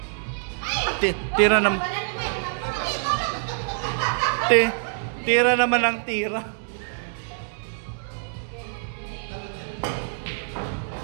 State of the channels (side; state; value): left; silent; 61 dB below the other